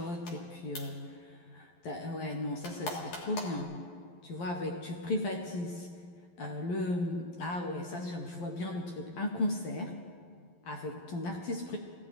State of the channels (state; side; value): late; right; 11 ms